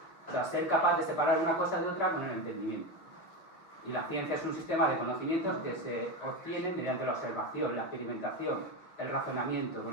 O sea, ser capaz de separar una cosa de otra con el entendimiento. Y la ciencia es un sistema de conocimientos que se obtiene mediante la observación, la experimentación, el razonamiento,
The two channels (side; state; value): right; late; 5.7 ms